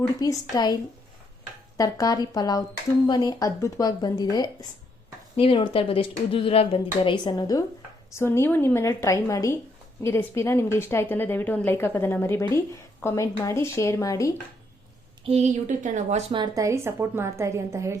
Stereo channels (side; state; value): both; normal; correlation 0.73